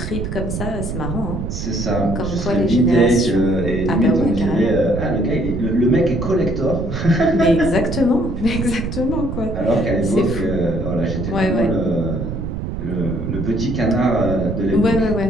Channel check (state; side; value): noise; right; rumble, 5 dB below the sound